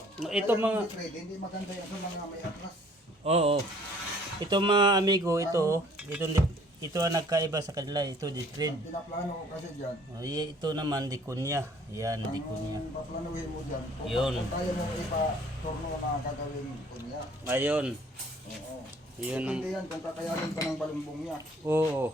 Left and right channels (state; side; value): normal; both; correlation 0.56